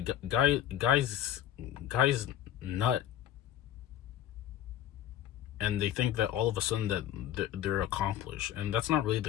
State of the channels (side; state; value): right; quieter; 11.4 dB